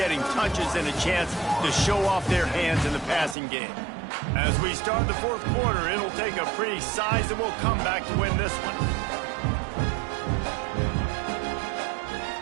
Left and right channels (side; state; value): left; drops out; at 3.4 s